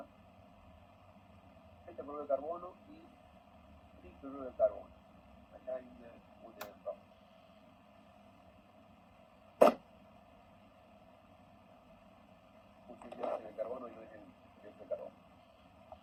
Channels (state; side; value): identical; both; correlation 1.00